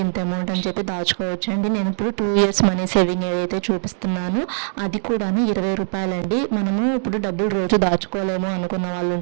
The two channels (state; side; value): silent; left; digital silence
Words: ఇంత అమౌంట్ అని చెప్పి దాచుకోవచ్చు అండి. నేను ఇప్పుడు 2 years మనీ సేవింగ్ ఐడియా అయితే చూపిస్తున్నాను. అది కూడా 20 రూపాయలండి. మనము ఇప్పుడు డబ్బులు రోజు దాచుకోలేము అనుకున్న వాళ్ళు